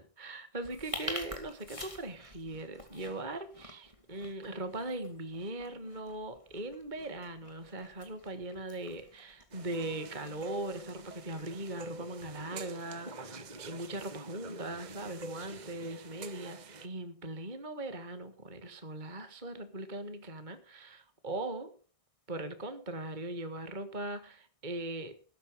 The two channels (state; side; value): late; left; 1.6 ms